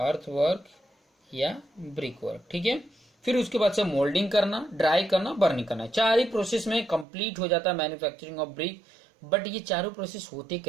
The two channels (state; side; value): drops out; left; at 7.1 s